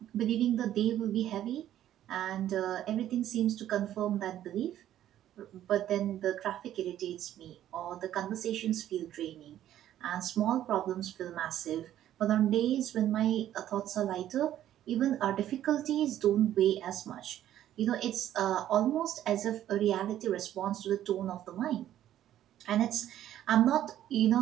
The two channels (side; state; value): left; quieter; 12.0 dB